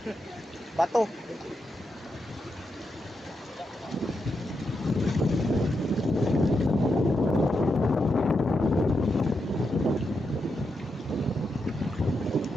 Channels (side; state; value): both; normal; correlation 0.85